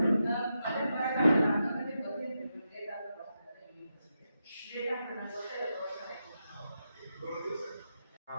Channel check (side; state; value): both; inverted; correlation -0.86